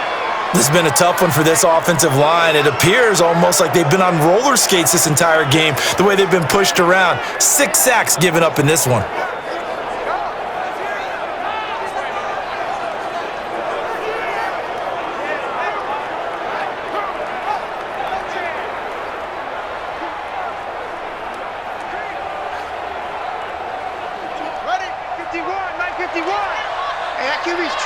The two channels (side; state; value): both; identical; correlation 1.00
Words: This has been a tough one for this offensive line. It appears almost like they've been on roller skates this entire game, the way they've been pushed around. 6 sacks given up in this one. Ready? 51, 951. Hey, that QB's